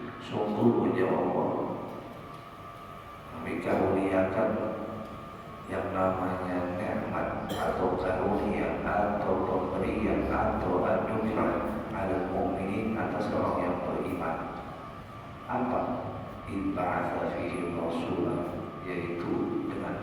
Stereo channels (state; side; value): identical; both; correlation 1.00